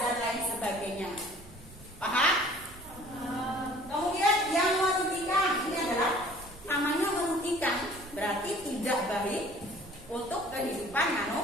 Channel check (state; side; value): noise; right; rumble, 21 dB below the sound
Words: lain sebagainya. Paham? Kemudian yang merugikan ini adalah namanya merugikan, berarti tidak baik untuk kehidupan